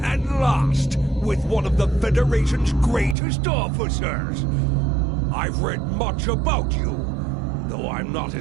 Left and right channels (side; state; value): left; drops out; at 3.2 s